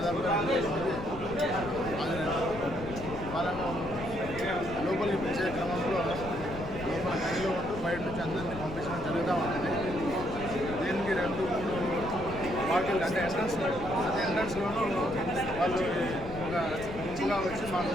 2,000 మంది హాజరయ్యారు. వాళ్ళను లోపలికి పిలిచే క్రమంలో లోపల గదిలో ఉంటూ బయట నుంచి అందరినీ పంపించడం జరుగుతూ ఉంటుంది. దీనికి 2-3 పార్టీలు అంటే ఎంట్రన్స్లోనూ వాళ్ళు ఒక గుంపుగా వచ్చి మాకు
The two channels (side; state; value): left; noise; rumble, 11 dB below the sound